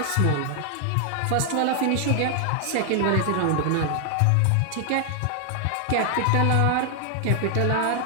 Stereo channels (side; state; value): both; different; correlation 0.00